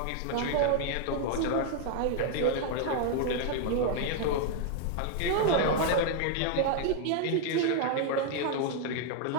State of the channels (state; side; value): different; both; correlation 0.00